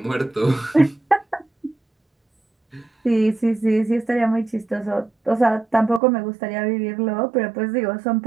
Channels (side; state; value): left; drops out; at 6.0 s